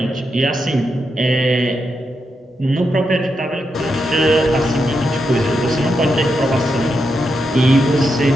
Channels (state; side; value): normal; both; correlation 0.84